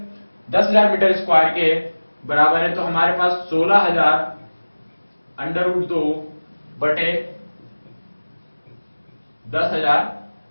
10,000 मीटर स्क्वायर के बराबर है तो हमारे पास 16,000 √2 बटे 10,000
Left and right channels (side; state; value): both; inverted; correlation -1.00